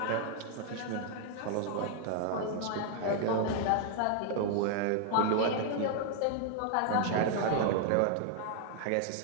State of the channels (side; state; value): both; different; correlation 0.00